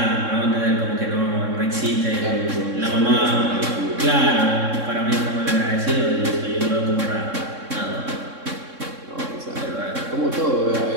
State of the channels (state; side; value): late; left; 3.6 ms